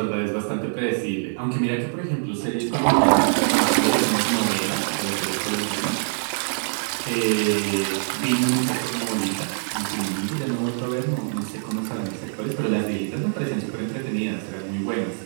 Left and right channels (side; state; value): left; silent; digital silence